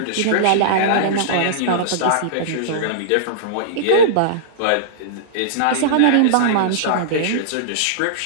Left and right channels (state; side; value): different; both; correlation -0.03